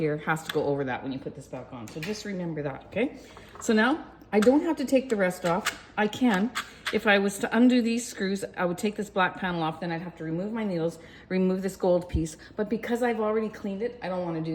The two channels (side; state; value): both; identical; correlation 1.00